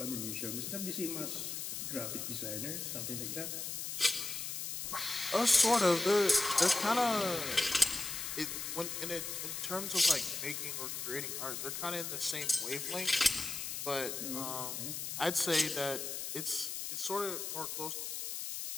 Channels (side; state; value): left; noise; hiss, 4 dB below the sound